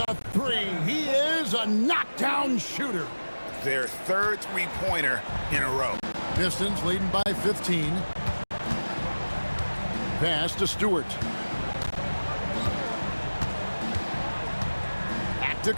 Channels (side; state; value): both; inverted; correlation -1.00